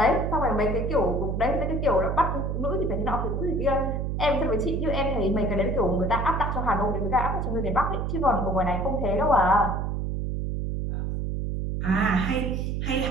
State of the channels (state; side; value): noise; right; hum, 1 dB below the sound